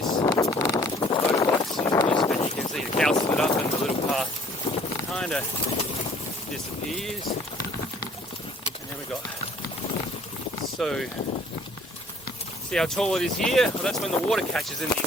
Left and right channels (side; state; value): both; normal; correlation 0.57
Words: Motorbikes using this, but you can see the cow split up and the little path kind of disappears. And then we got, so see how tall it is here? Well, that's when the water catches in